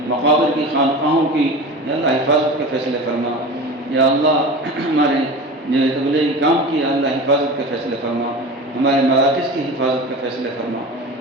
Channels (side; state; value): both; normal; correlation 0.31